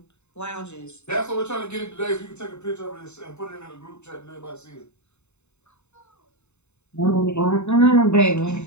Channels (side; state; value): right; late; 0.82 ms